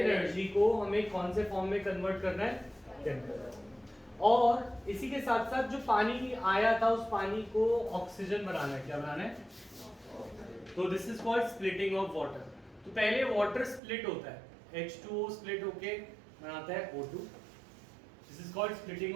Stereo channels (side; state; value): left; drops out; at 13.8 s